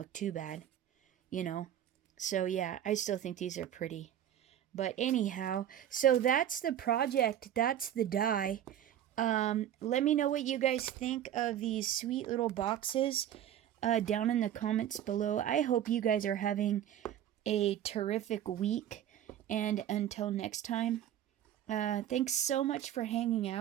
too bad, you know? So yeah, I still think these are pretty. But anyhow, so that's the project. That's the die. Let me know what you guys think of these sweet little boxes down in the comments below. I hope you guys are having a terrific week. And until next time, thanks so much for hanging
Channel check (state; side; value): quieter; left; 10.9 dB